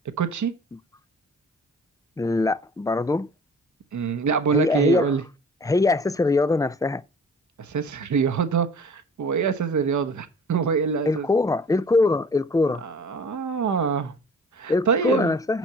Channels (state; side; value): normal; both; correlation 0.47